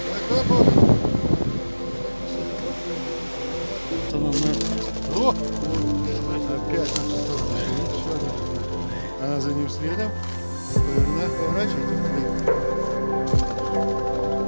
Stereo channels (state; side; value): inverted; both; correlation -1.00